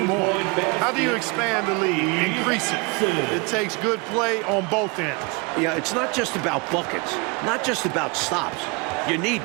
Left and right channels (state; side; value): quieter; left; 29.5 dB